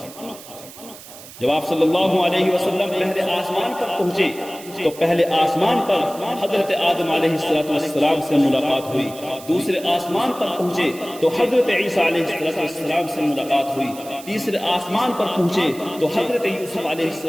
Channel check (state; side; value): noise; right; hiss, 17 dB below the sound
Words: جب آپ صلی اللہ علیہ وسلم پہلے آسمان پر پہنچے تو پہلے آسمان پر حضرت آدم علیہ السلام سے ملاقات ہوئی، دوسرے آسمان پر پہنچے تو حضرت عیسیٰ علیہ السلام سے ملاقات ہوئی، تیسرے آسمان پر پہنچے تو حضرت یوسف علیہ